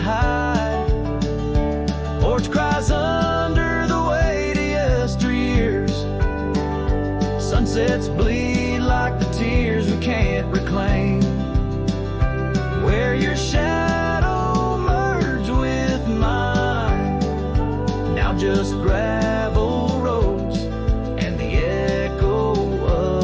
Porch cries under the weight of yesteryears. Sunsets bleed like the tears we can't reclaim. Where your shadow merged with mine, now just gravel roads and the echo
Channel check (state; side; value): identical; both; correlation 1.00